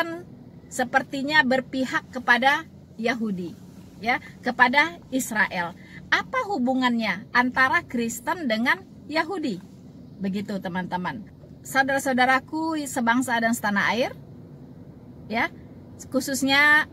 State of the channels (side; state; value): both; identical; correlation 1.00